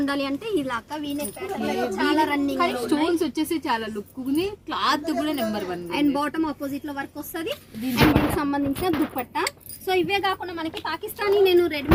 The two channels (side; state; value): both; identical; correlation 1.00